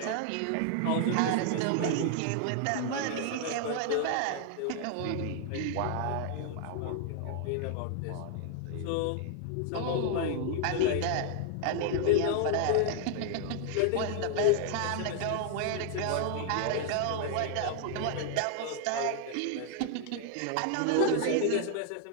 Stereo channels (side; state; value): both; different; correlation 0.00